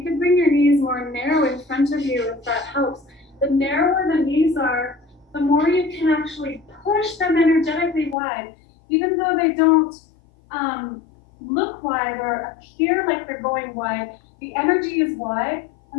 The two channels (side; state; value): right; drops out; at 8.2 s